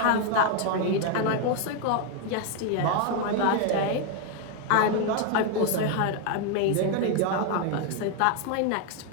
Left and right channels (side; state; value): both; different; correlation 0.01